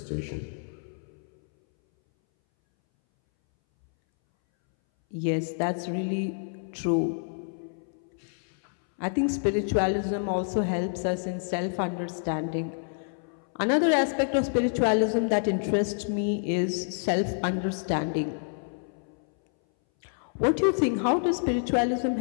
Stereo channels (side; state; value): right; silent; 59 dB below the other